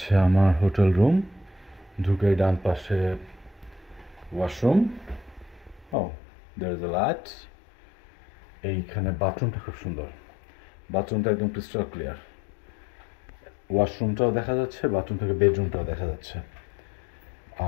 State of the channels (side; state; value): right; drops out; at 6.0 s